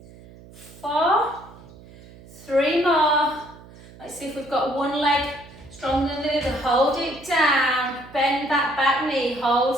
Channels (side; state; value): right; noise; hum, 21 dB below the sound